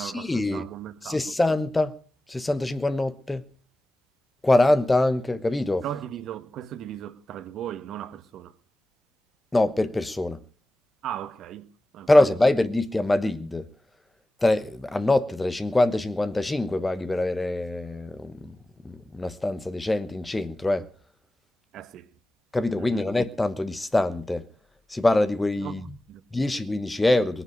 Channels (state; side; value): normal; both; correlation 0.95